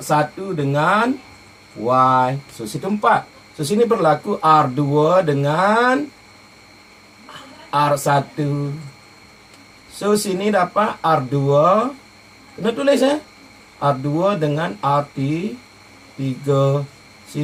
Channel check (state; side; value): identical; both; correlation 1.00